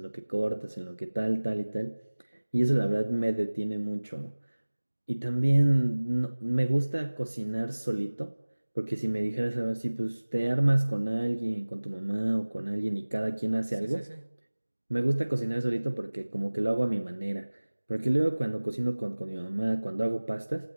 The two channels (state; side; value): inverted; both; correlation -1.00